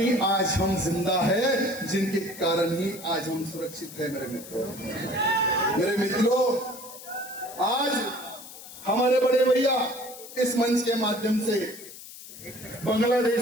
आज हम जिंदा है, जिनके कारण ही आज हम सुरक्षित है मेरे मित्रों। मेरे मित्रों, आज हमारे बड़े भैया इस मंच के माध्यम से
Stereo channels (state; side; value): noise; left; hiss, 15 dB below the sound